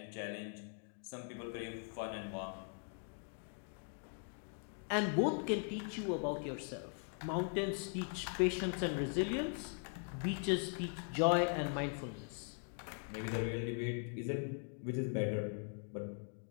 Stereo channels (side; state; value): right; silent; 51 dB below the other